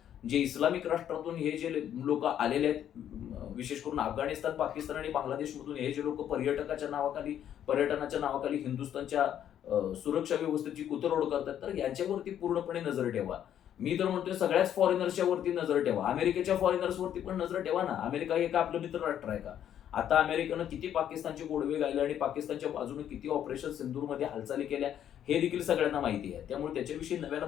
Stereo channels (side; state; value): right; quieter; 10.2 dB